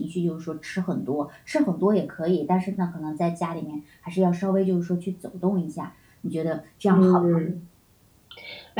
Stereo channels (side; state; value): both; identical; correlation 1.00